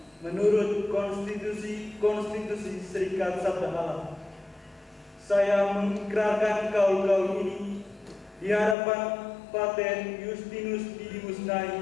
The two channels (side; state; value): right; drops out; at 8.8 s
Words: menurut konstitusi Serikat Sabda Allah. Saya mengikrarkan kaul ini di hadapan Pater Justinus Didimus